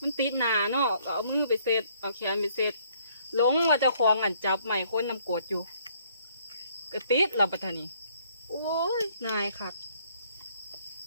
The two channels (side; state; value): both; inverted; correlation -0.65